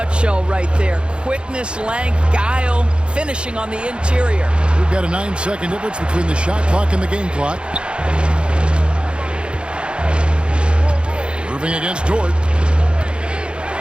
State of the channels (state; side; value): late; left; 0.055 ms